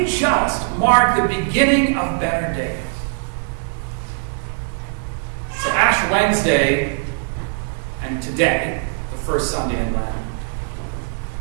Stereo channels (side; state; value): left; silent; 60 dB below the other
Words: just mark the beginning of better days. So Ash Wednesday and today, the first Sunday in Lent,